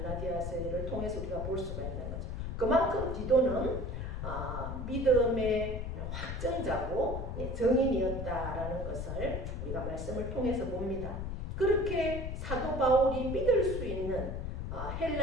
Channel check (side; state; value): left; noise; rumble, 4 dB below the sound